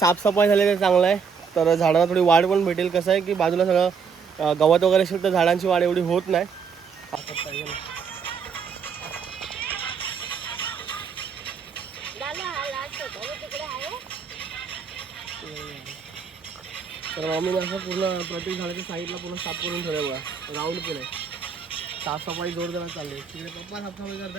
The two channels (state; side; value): quieter; left; 6.1 dB